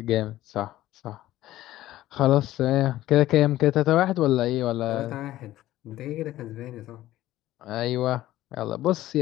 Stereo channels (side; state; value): right; quieter; 14.9 dB